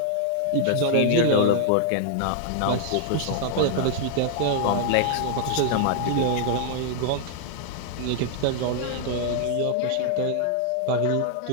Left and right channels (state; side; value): different; both; correlation -0.01